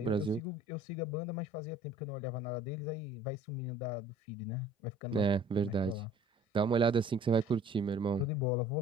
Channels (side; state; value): both; normal; correlation 0.52